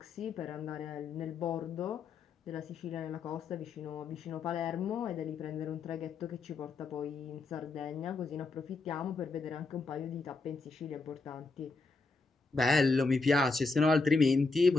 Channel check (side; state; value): right; quieter; 3.9 dB